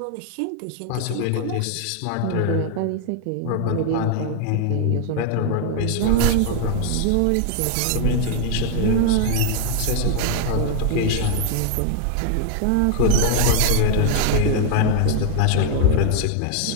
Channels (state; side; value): different; both; correlation 0.00